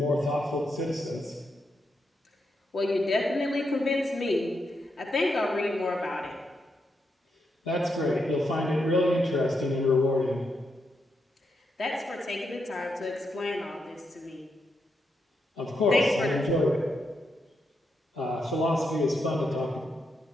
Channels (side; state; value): both; normal; correlation 0.82